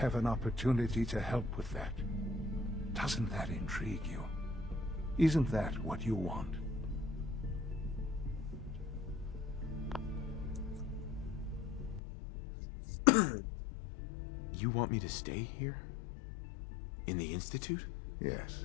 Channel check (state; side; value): drops out; right; at 12.0 s